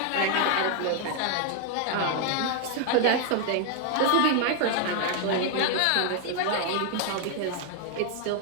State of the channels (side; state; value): both; different; correlation 0.00